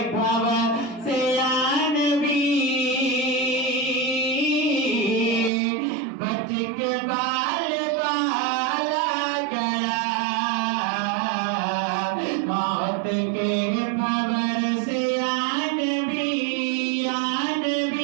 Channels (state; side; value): drops out; left; at 5.5 s